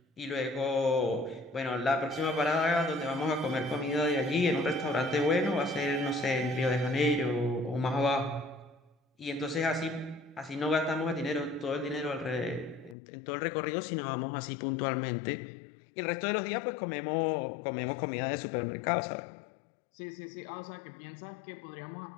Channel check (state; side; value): drops out; right; at 13.0 s